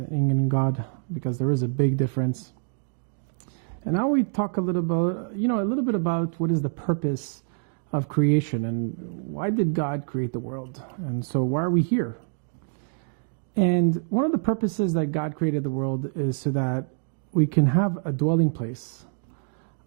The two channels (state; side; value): silent; left; digital silence